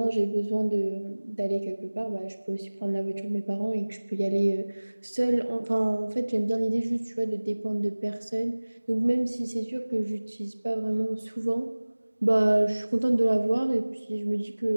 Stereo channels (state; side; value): inverted; both; correlation -1.00